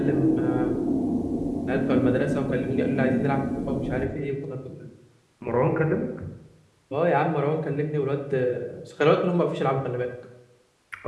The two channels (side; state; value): both; identical; correlation 1.00